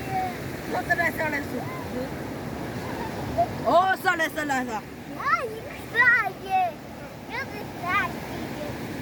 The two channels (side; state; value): both; identical; correlation 1.00